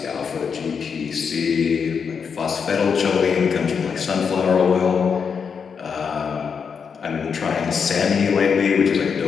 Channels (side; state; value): right; quieter; 6.3 dB